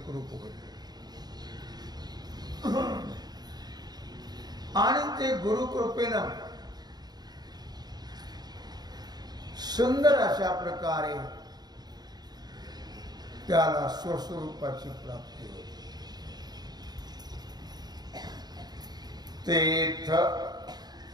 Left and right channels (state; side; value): late; left; 0.20 ms